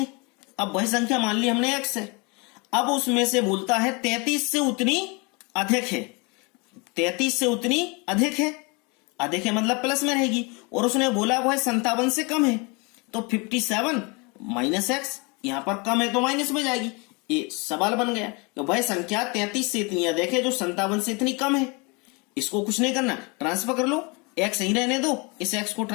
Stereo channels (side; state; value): right; quieter; 29.4 dB